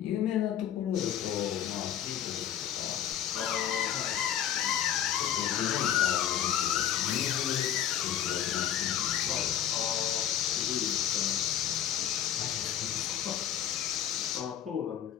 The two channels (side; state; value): right; quieter; 10.3 dB